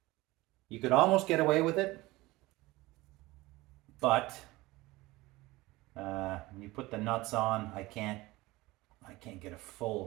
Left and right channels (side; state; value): left; quieter; 20.2 dB